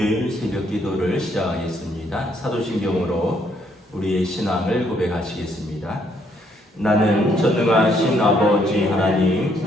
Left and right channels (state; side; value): normal; both; correlation 0.70